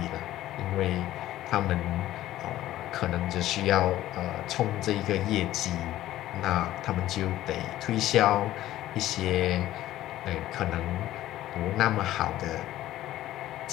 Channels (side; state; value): right; quieter; 14.2 dB